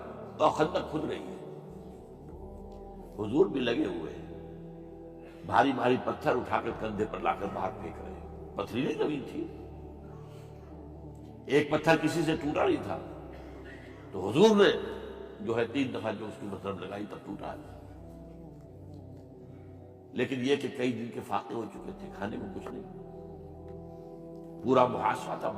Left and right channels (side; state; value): both; identical; correlation 1.00